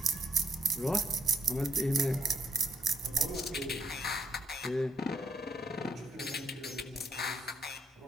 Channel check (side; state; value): both; normal; correlation 0.71